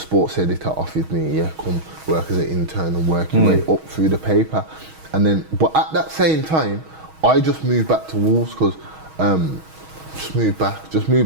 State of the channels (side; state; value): left; late; 6.3 ms